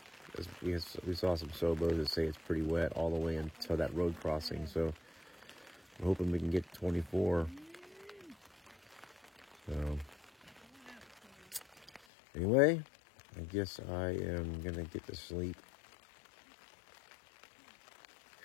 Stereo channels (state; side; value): drops out; right; at 12.0 s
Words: We saw some Sobos that say it's pretty wet all the way until that road crossing. So I'm hoping we can get 24. So anyway, I guess I am going to get to sleep.